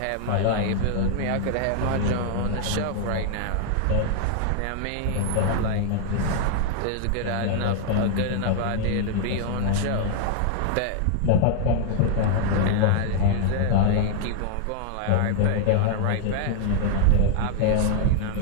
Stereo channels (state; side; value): different; both; correlation 0.00